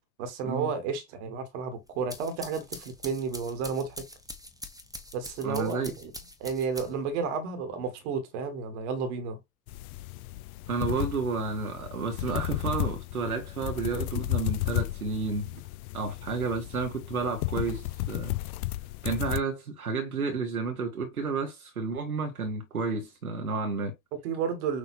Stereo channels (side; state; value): both; normal; correlation 0.10